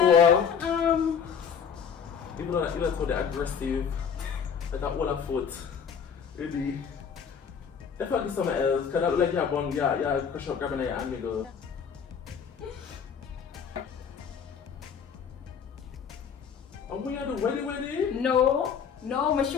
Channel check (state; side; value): quieter; right; 7.0 dB